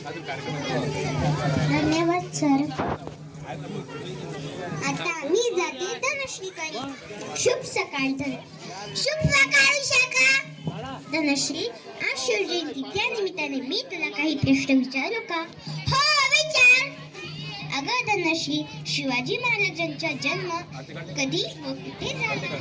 धन्यवाद सर. आता मी जाते धनश्रीकडे. शुभ सकाळ शुभ सकाळ विशाखा. धनश्री, आज शिवजयंती त्या निमित्ताने मी तुला काही प्रश्न विचारू का. हो, विचार. अगं धनश्री, शिवाजी महाराजांचा जन्म कधी व कुठे झाला.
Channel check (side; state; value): both; identical; correlation 1.00